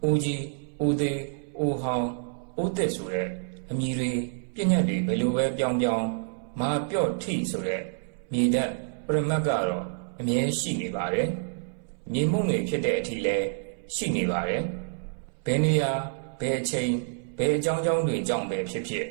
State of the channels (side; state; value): left; silent; 59 dB below the other